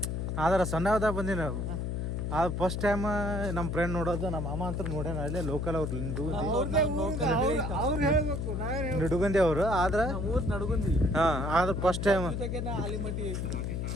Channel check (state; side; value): noise; left; hum, 2 dB below the sound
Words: ಆದ್ರೆ ಸಣ್ಣವದಾಗ ಬಂದಿ ನಾವು. ಅದು ಫಸ್ಟ್ ಟೈಮ್ ನಮ್ಮ ಫ್ರೆಂಡ್ ನೋಡೋದು. ನಮ್ಮ ಅಮ್ಮ ಅಂತ ನೋಡ್ಯಾನ ಅಲ್ಲೇ ಲೋಕಲ್. ಅವ್ರು ನಿಡುಗಂದಿ ಅವರು. ಆದ್ರೆ ಆದ್ರೆ ಫಸ್ಟ್ ಟೈಮ್.